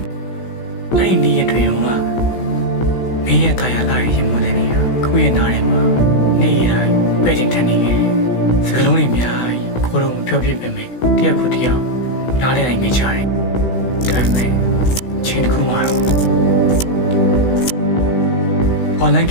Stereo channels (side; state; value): right; late; 16 ms